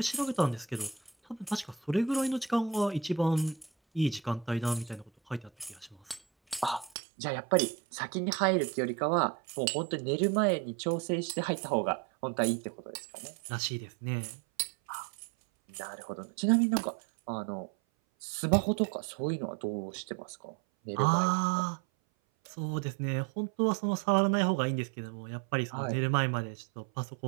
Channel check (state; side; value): drops out; left; at 6.9 s